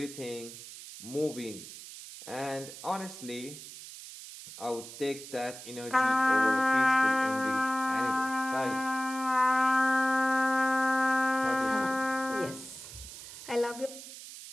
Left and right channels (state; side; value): noise; right; hiss, 13 dB below the sound